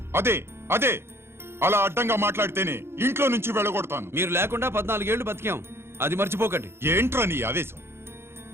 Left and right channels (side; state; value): left; late; 0.12 ms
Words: అదే అదే అలా అడ్డంగా మాట్లాడితేనే ఇంట్లో నుంచి వెళ్ళగొడతాను. మీరు లేకుండా 14 ఏళ్లు బతికాం, అది మర్చిపోకండి. ఏంట్రా నీ ఆవేశం?